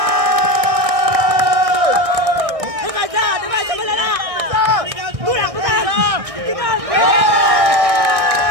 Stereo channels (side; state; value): left; late; 1.6 ms